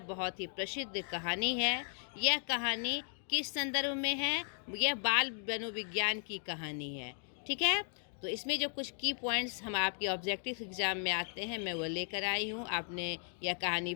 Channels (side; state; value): right; silent; 54 dB below the other